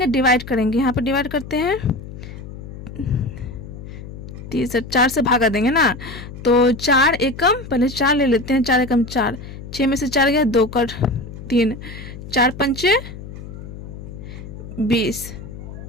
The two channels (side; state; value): left; noise; hum, 12 dB below the sound